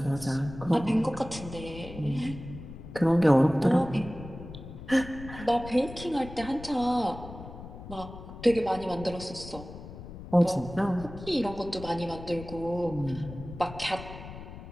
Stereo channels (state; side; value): noise; left; rumble, 13 dB below the sound